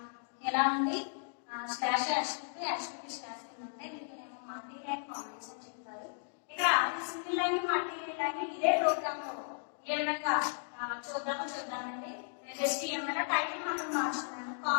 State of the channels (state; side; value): silent; right; digital silence